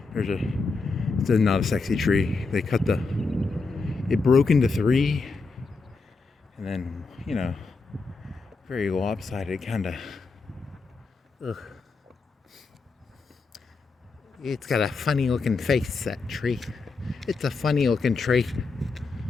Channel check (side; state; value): right; quieter; 4.2 dB